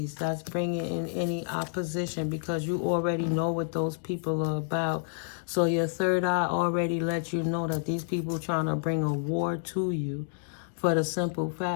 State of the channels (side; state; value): right; silent; digital silence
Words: that's bringing in any opposition, because you already know what those people are about. So your third eye already lets you know that these people trying to bring a war to you, for the simple